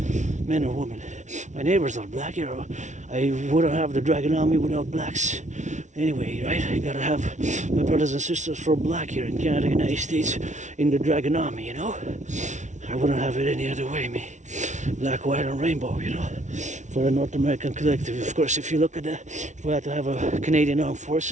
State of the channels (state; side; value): late; left; 0.35 ms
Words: man or woman. My neighbors are black here. I wouldn't have the Dragon Army without blacks. Anyway, right? I gotta have my brothers and sisters from black here in Canada, United States, in the Dragon Army, you know? I wouldn't have it any other way, me. Black, white, and rainbow, you know? For a North American collective. Of course, if you look at if we had to have a Canadian Armed